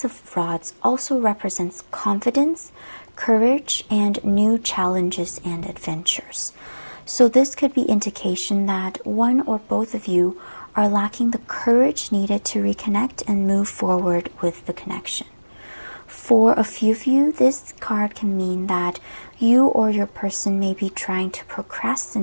of Rods also represents confidence, courage, and new challenges and adventures. So this could be indication that one or both of you are lacking the courage needed to reconnect and move forward with the connection. For a few of you, this card can mean that you or your person may be trying to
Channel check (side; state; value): both; inverted; correlation -1.00